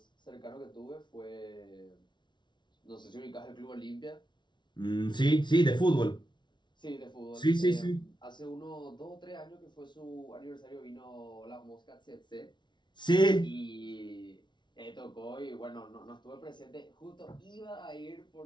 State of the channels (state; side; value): late; right; 0.22 ms